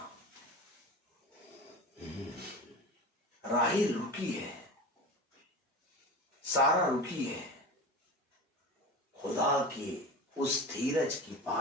राहिल रुकी है, सारा रुकी है, खुदा की उस धीरज की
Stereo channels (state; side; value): normal; both; correlation 0.30